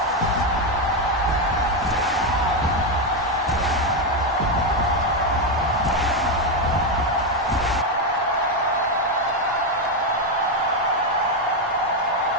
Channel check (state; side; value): normal; both; correlation 0.06